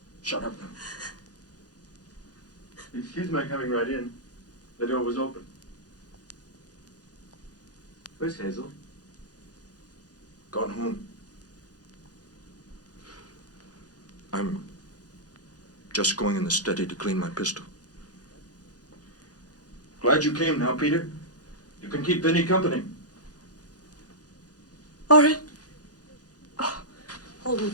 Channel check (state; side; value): late; right; 0.68 ms